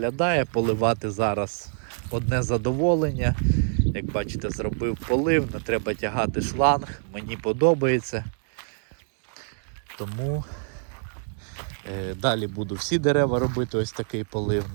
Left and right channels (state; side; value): silent; left; 61 dB below the other